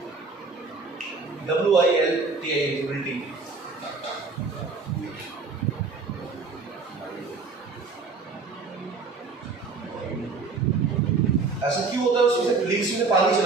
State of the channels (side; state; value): left; quieter; 4.3 dB